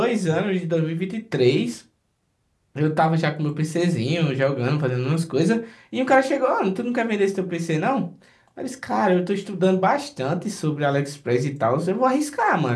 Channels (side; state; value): both; identical; correlation 1.00